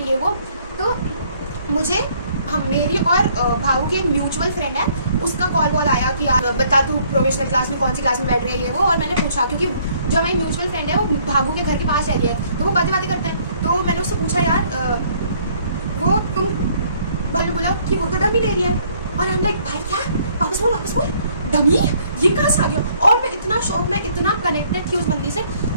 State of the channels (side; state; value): both; inverted; correlation -0.62